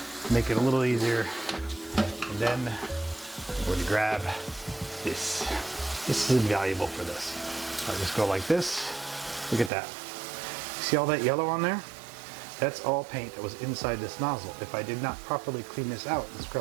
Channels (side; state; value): left; drops out; at 9.7 s